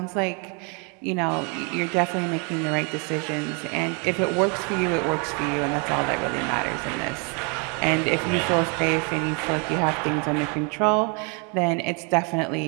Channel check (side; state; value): left; quieter; 34.6 dB